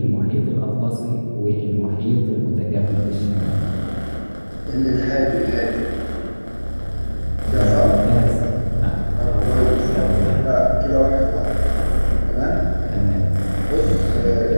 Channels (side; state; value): both; inverted; correlation -1.00